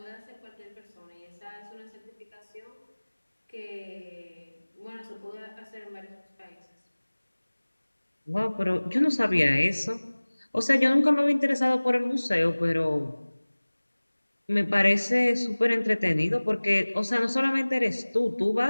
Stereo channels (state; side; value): inverted; both; correlation -1.00